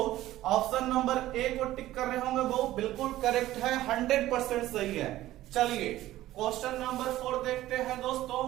ऑप्शन नंबर ए को टिक कर रहे होंगे वो बिल्कुल करेक्ट है, 100% सही है। चलिए क्वेश्चन नंबर 4 देखते हैं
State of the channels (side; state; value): left; quieter; 15.1 dB